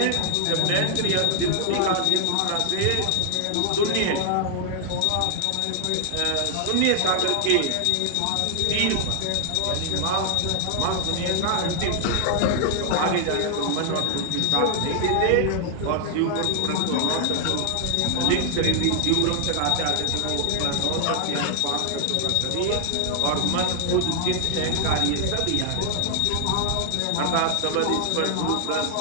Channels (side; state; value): both; different; correlation 0.00